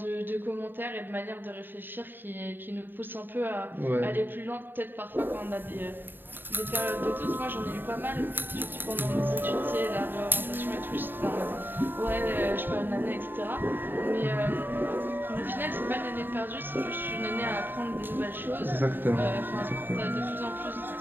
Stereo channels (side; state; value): left; late; 0.095 ms